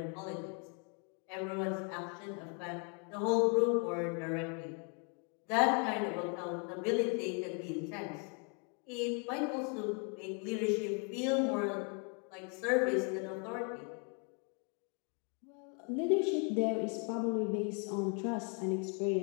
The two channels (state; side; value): quieter; right; 36.6 dB